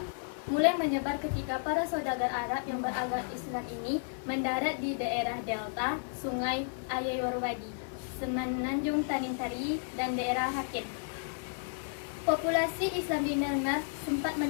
mulai menyebar ketika para saudagar Arab yang beragama Islam ini mendarat di daerah delta Sungai Ayeyarwady, Semenanjung Tanintari, dan daerah Haken. Populasi Islam di Myanmar sempat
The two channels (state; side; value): silent; right; 56 dB below the other